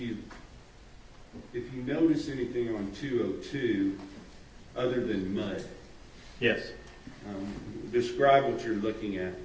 if you notice anything on 202 other than mud. Yes. Describe what you're looking at.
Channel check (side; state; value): both; identical; correlation 1.00